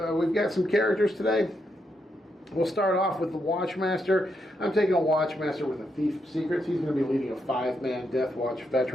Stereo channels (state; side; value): normal; both; correlation 0.81